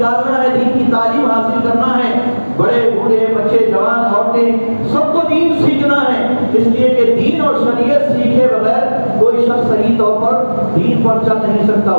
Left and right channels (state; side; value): inverted; both; correlation -1.00